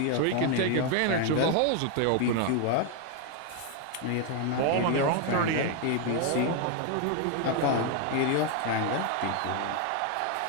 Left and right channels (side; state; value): both; different; correlation 0.01